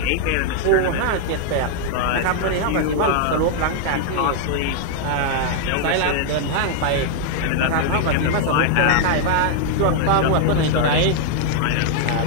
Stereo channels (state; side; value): different; both; correlation 0.00